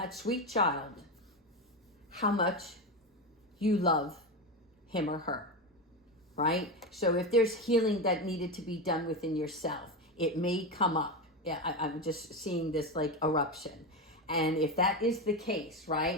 sweet child how much you love him or her, right? So if there's healing that needed to be done within yourself, it may come up. Yeah, I'm just seeing this like eruption. And if that is the case,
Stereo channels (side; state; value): both; normal; correlation 0.17